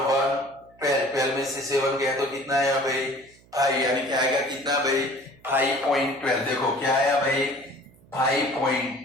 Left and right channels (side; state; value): right; noise; hum, 28 dB below the sound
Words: 12 में से 7 गया तो कितना आया भाई 5, यानी क्या आएगा कितना भाई 5.12। देखो क्या आया भाई